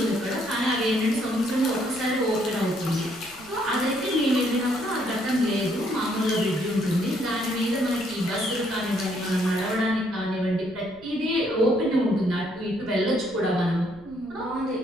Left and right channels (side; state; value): left; noise; rumble, 24 dB below the sound